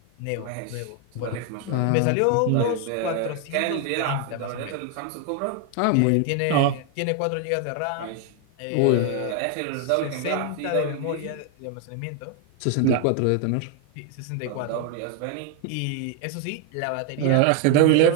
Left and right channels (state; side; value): different; both; correlation 0.01